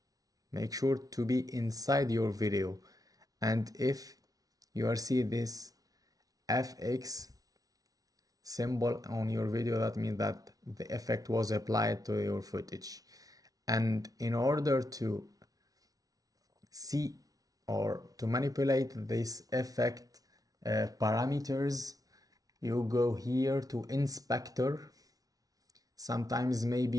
Make sure to be inside your video. And if you are seeing this FX symbol on your video, that means that the effect was applied to your footage. And in order to see or to manipulate this effect parameters, you go here to inspector. Sometimes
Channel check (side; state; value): left; late; 0.18 ms